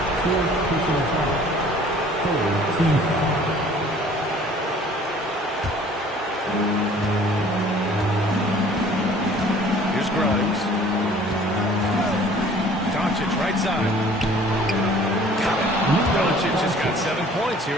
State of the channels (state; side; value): normal; both; correlation 0.52